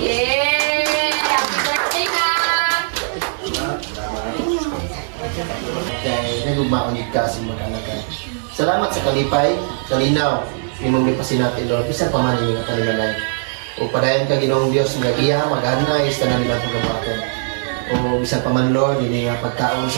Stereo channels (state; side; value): silent; left; digital silence